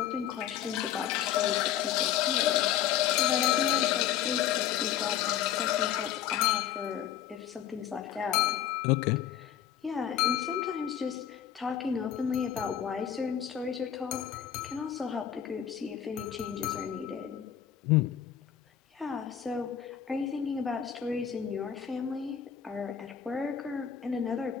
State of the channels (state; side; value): quieter; right; 9.7 dB